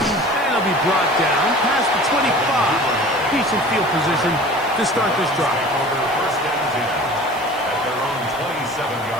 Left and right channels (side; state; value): left; noise; hiss, 22 dB below the sound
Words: he'll be brought down past the 25. Decent field position to start this drive. First and 10 at their own